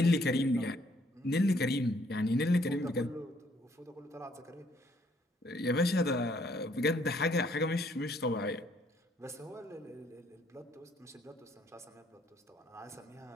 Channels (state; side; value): normal; both; correlation 0.66